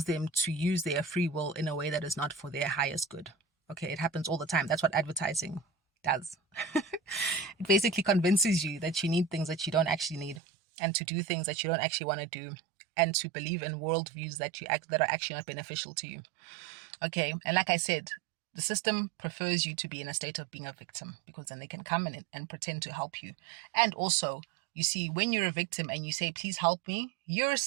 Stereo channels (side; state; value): left; drops out; at 10.4 s